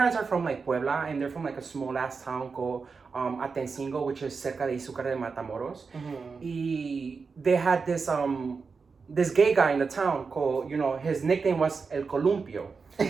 are from like Puebla, and they're from like a small ass town called Atencingo, which is cerca de Izúcar de Matamoros. Y they had this gay guy in the town called, his nickname was El Columpio.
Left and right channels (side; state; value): left; quieter; 4.9 dB